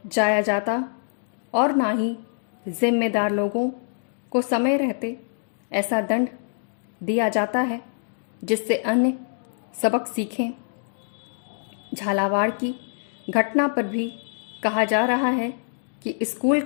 जाया जाता और ना ही जिम्मेदार लोगों को समय रहते ऐसा दंड दिया जाता है जिससे अन्य सबक सीखें। झालावाड़ की घटना पर भी कहा जा रहा है कि स्कूल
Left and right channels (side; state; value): right; silent; digital silence